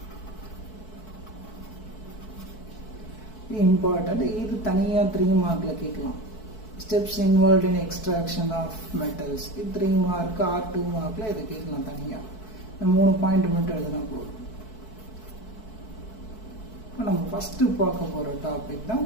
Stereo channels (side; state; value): right; late; 4.6 ms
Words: Important. இது தனியா 3 மார்க்ல கேட்கலாம். Steps involved in extraction of metals. இது 3 mark R 2 மார்க்ல இதை கேட்கலாம் தனியா. 3 point மட்டும் எழுதினா போதும். இப்போ நம்ம ஃபஸ்ட்டு பார்க்க போகிற டாபிக் தான்